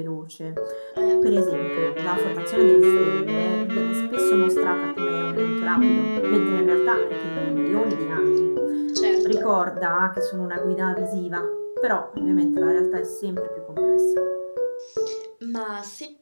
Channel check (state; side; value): inverted; both; correlation -1.00